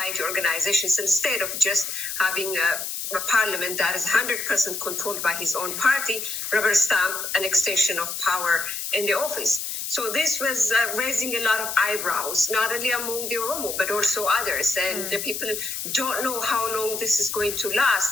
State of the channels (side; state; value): left; noise; hiss, 5 dB below the sound